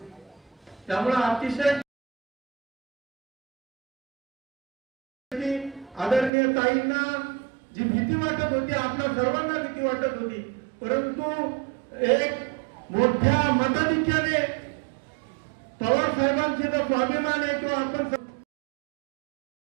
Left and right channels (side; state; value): left; drops out; at 6.3 s